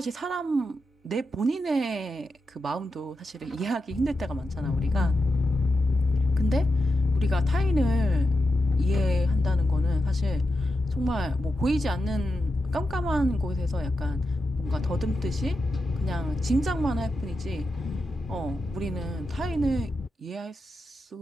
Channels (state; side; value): normal; both; correlation 0.88